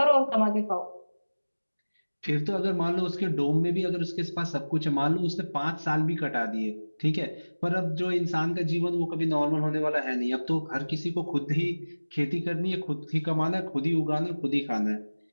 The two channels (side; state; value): both; inverted; correlation -1.00